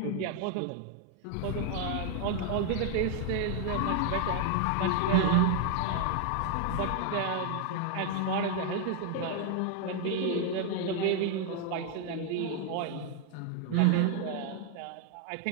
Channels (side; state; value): both; different; correlation 0.00